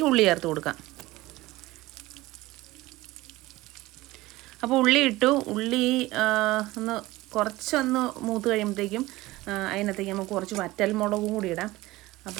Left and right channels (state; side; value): quieter; left; 18.6 dB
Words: ഉള്ളി ചേർത്ത് കൊടുക്കാം. അപ്പോൾ ഉള്ളി ഇട്ടു. ഉള്ളി കുറച്ചൊന്ന് മൂത്ത് കഴിയുമ്പോഴത്തേക്കും അതിനകത്തേക്ക് നമുക്ക് കുറച്ച് വറ്റൽമുളകും കൂടി ഇടാം.